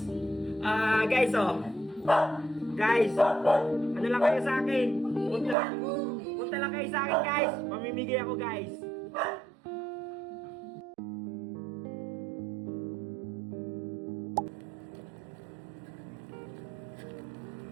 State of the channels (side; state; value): left; drops out; at 5.6 s